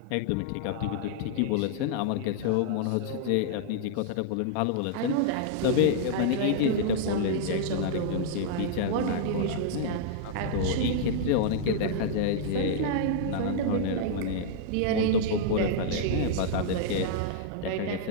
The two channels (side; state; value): both; different; correlation -0.01